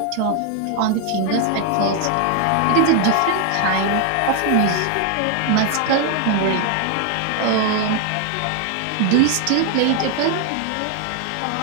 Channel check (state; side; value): different; both; correlation 0.00